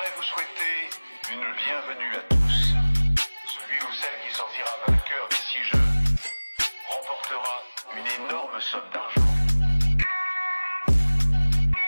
vous souhaiter une bienvenue à tous. Celui ou celle qui sortira vainqueur d'ici jeu remportera une énorme somme d'argent.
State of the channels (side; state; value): both; inverted; correlation -1.00